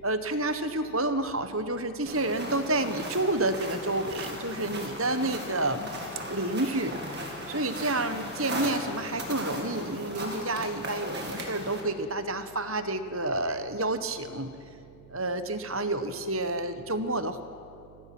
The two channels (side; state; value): right; noise; hum, 22 dB below the sound